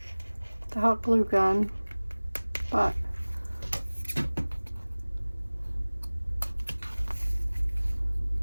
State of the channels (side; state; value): both; inverted; correlation -1.00